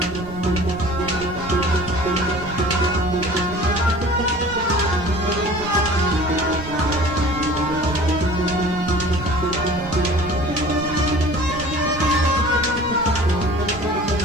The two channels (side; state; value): right; noise; rumble, 13 dB below the sound